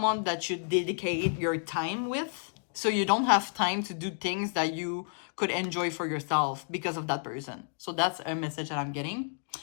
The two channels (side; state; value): right; silent; digital silence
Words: that you dedicate your time with. So you don't have time to do things that you could enjoy for yourself because of that person. So that's a message that I'm getting.